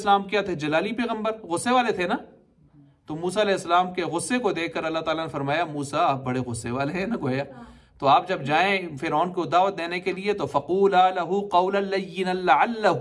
क्या थे? जलाली पैगंबर, गुस्से वाले थे ना। तो मूसा अलैहिस्सलाम के गुस्से को देखकर अल्लाह ताला ने फरमाया, मूसा आप बड़े गुस्से वाले हैं ना गोया, तो आप जब जाएं फिरौन को दावत देने के लिए तो फ़क़ूला लहू क़ौलन लय्यिनन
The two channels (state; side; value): identical; both; correlation 1.00